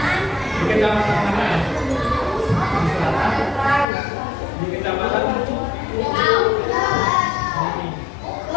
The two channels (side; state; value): right; drops out; at 3.9 s